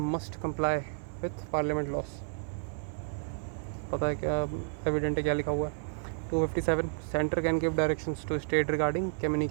comply with parliament loss. पता है क्या, एविडेंट है क्या लिखा हुआ है, 257 centre can give directions to state regarding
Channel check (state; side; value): silent; left; 57 dB below the other